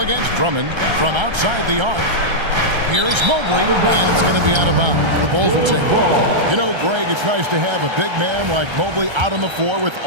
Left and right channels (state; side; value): late; left; 1.3 ms